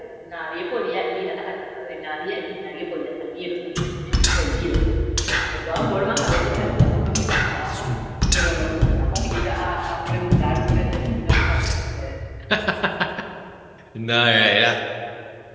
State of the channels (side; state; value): both; identical; correlation 1.00